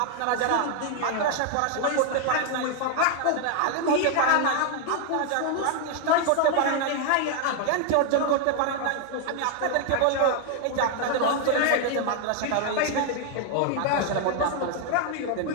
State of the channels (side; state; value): both; different; correlation 0.00